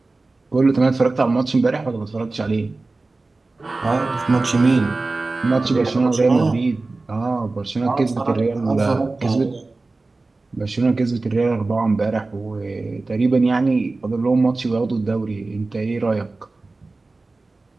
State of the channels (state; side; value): quieter; left; 3.4 dB